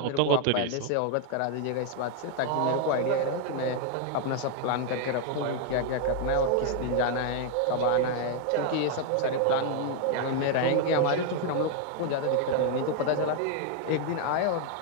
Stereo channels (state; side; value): different; both; correlation 0.00